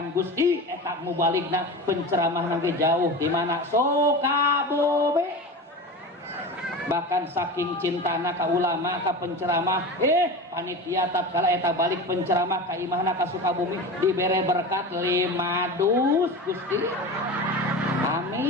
Gusti eta mubaligna penceramah nanti jauh di mana Sukabumi bahkan saking cintana ka ulama ka penceramah panitia tatkala eta balik penceramah ka imahna ka Sukabumi dibere berkat 5 dus Gusti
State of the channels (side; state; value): both; normal; correlation 0.29